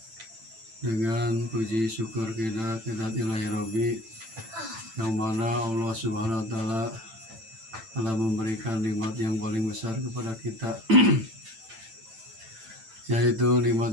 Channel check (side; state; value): left; late; 9.0 ms